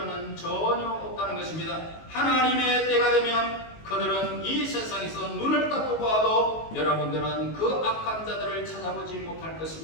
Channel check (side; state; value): right; late; 19 ms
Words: 전혀 없다는 것입니다. 하나님의 때가 되면 그들은 이 세상에서 눈을 닫고 봐도 여러분들은 그 악한 자들을 찾아보지 못할